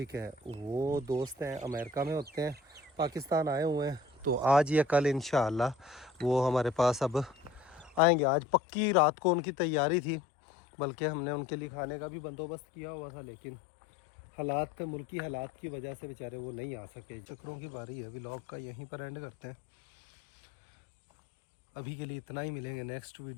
है, वो दोस्त हैं, अमेरिका में होते हैं, पाकिस्तान आए हुए हैं। तो आज या कल इंशाअल्लाह वो हमारे पास अब आएंगे। आज पक्की रात को उनकी तैयारी थी, बल्कि हमने उनके लिए खाने का भी बंदोबस्त किया हुआ था, लेकिन हालात मुल्की हालात की वजह से बेचारे वो नहीं आ सके। चक्रों की बारी है, व्लॉग का यहीं पर एंड करते हैं। अभी के लिए इतना ही, मिलेंगे नेक्स्ट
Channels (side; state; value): right; drops out; at 8.0 s